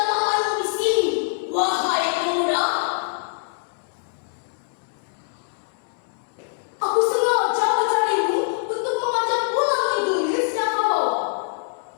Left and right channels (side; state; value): right; silent; digital silence